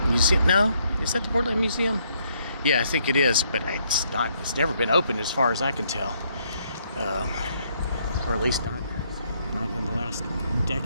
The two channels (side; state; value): both; inverted; correlation -0.71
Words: Museum. No, is that the Portland Museum? Yeah, I think it is, but it's not. It's never been opened as far as I can tell, or at least not in the last